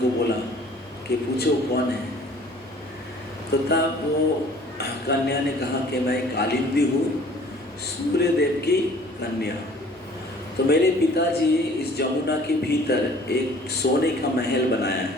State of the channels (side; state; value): both; normal; correlation 0.51